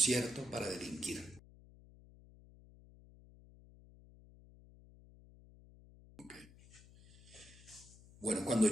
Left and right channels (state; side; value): noise; left; hum, 22 dB below the sound